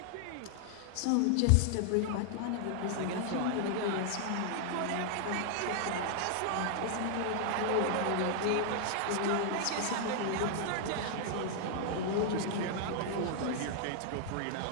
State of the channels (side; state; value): both; different; correlation 0.00